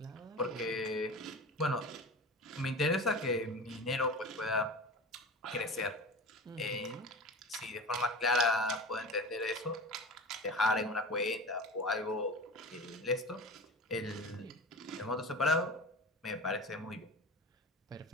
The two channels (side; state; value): both; normal; correlation 0.32